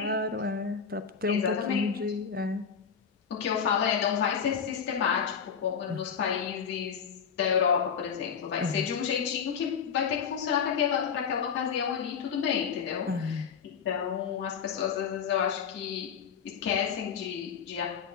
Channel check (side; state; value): right; quieter; 6.8 dB